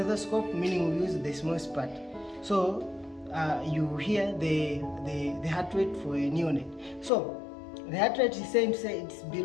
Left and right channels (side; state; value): right; drops out; at 7.1 s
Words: meaning we'll use the smallest part. So you hear the heart rate for a neonate. So the heart rate is saying it's